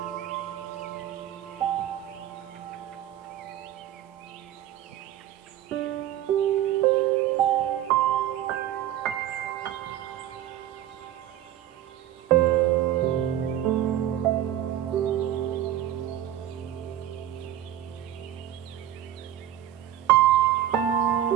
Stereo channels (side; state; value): left; quieter; 12.0 dB